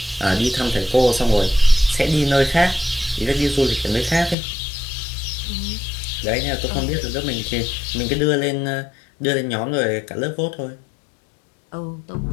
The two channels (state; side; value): drops out; right; at 4.4 s